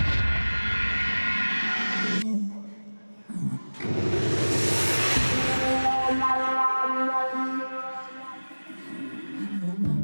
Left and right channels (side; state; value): both; inverted; correlation -1.00